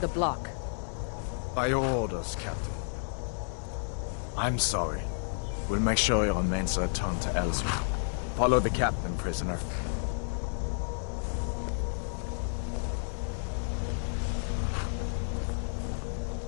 block. By your orders, Captain. I'm sorry. We'll make sure your remains are returned to Ellsworth. Follow the captain, prisoner.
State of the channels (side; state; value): right; silent; digital silence